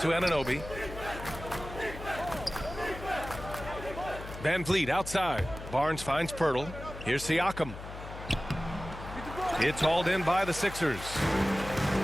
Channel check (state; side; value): noise; left; hum, 11 dB below the sound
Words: Anunoby. Van Vliet outside. Barnes finds Pirtle. Here's Siakam. It's hauled in by the Sixers.